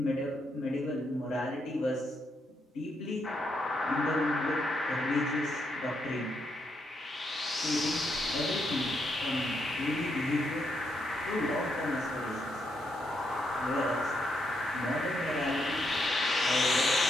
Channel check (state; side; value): normal; both; correlation 0.79